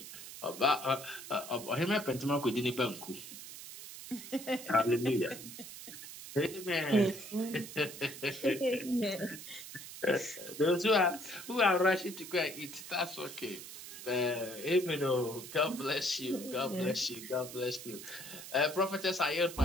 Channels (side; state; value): right; noise; hiss, 12 dB below the sound